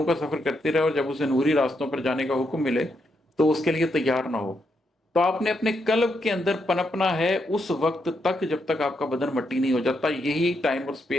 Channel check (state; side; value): normal; both; correlation 0.80